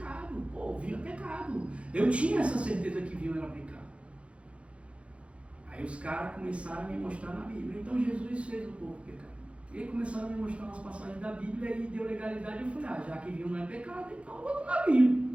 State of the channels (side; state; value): left; late; 0.061 ms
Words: vinho é pecado. Eu tinha essa certeza que vinho era pecado. Aí os caras começaram a me mostrar na Bíblia: então Jesus fez o povo pecar. E aí começaram a me mostrar umas passagens da Bíblia e deu legalidade. Eu falei: já que vinho não é pecado, então eu vou tomar